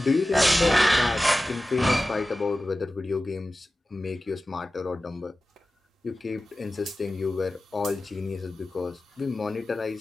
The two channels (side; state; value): both; normal; correlation 0.95